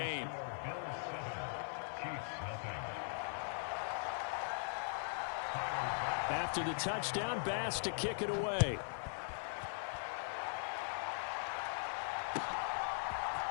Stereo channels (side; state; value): right; silent; 51 dB below the other